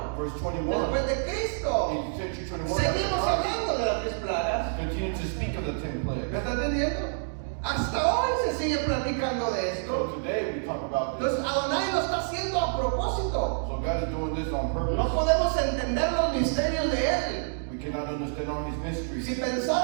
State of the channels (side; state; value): left; silent; digital silence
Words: verse 21, después de Cristo, in century 21, seguimos hablando de las 10 plagas. continue to speak of the 10 ¿Me plagues. está entendiendo? Hasta hoy se sigue platicando de So esto. today we talk about this. Entonces Adonai lo está haciendo a propósito. So God is doing this on purpose. No podemos entender los misterios de Él. We cannot understand all his mysteries. Si